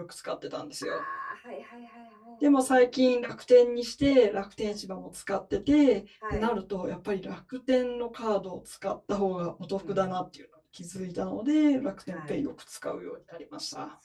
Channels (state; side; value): identical; both; correlation 1.00